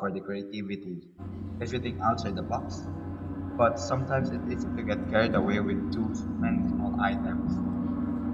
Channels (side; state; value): both; identical; correlation 1.00